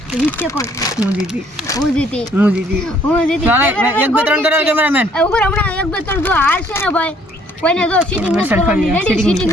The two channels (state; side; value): normal; both; correlation 0.62